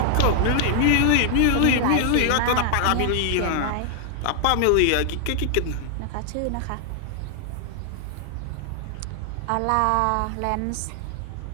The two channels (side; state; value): both; different; correlation 0.00